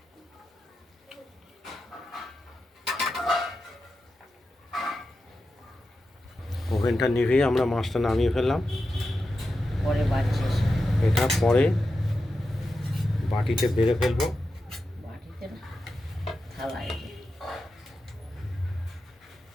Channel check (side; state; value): both; normal; correlation 0.90